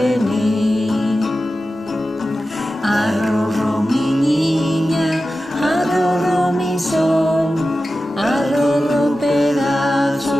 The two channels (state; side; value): normal; both; correlation 0.93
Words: Arrorró mi niña, arrorró mi sol, arrorró